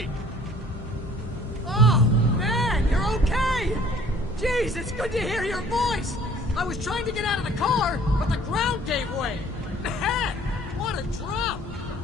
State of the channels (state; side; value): normal; both; correlation 0.54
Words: Oh, man, you're okay! Jeez, it's good to hear your voice! I was trying to get out of the car, but the ground gave way! Man, what a drop!